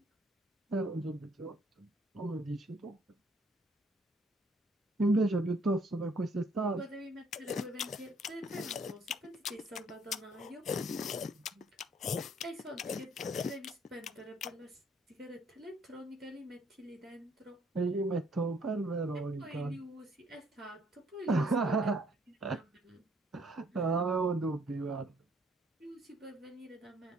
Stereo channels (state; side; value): normal; both; correlation 0.64